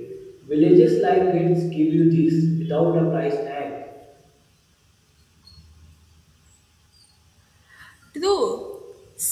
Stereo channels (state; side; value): identical; both; correlation 1.00